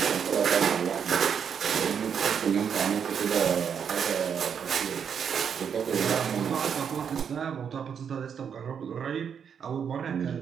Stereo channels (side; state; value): left; quieter; 7.4 dB